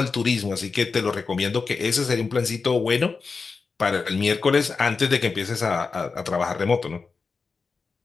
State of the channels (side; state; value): right; quieter; 4.7 dB